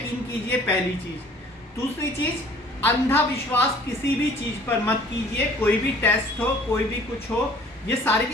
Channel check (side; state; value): both; normal; correlation 0.52